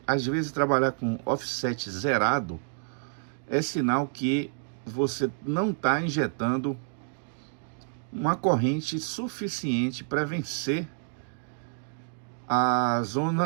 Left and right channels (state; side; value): silent; left; digital silence